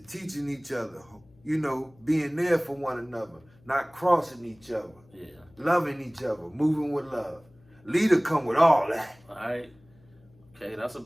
each other. You know, being there for one another, not crossing each other, Yeah. loving each other, moving with love. Leader come with all that. All right. Okay, that's a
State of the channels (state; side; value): noise; left; hum, 29 dB below the sound